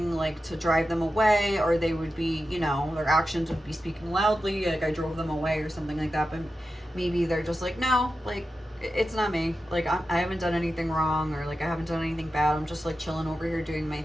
like to drive them away, or they would be, you know, their actions would be speaking loudly, like I drove them away or something like that. But maybe they're just like, no, like it's not me, like I haven't done anything wrong, or like I haven't done anything bad, I'm just like chilling over here doing my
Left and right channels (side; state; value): both; normal; correlation 0.91